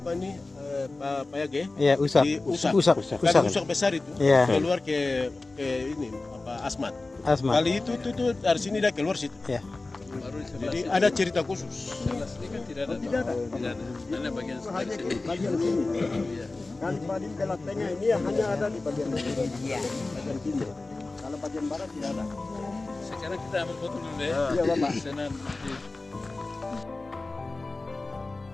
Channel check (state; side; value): quieter; right; 3.3 dB